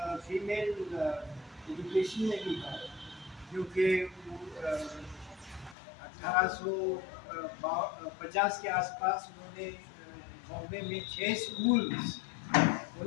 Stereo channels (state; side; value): drops out; right; at 5.8 s